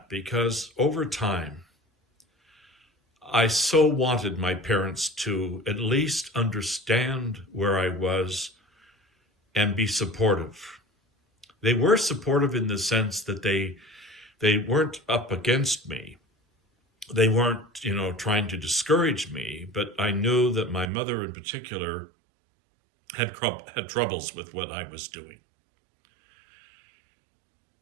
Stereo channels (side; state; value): left; drops out; at 20.9 s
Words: because over time, I so wanted my parents to at least understand where I was and be supportive. They were supportive in the sense that they weren't up against me. They weren't, trying to discourage me, but I knew that my mother in particular had troubles with what I was doing.